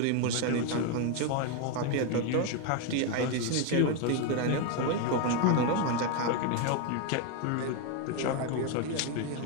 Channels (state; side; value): different; both; correlation 0.01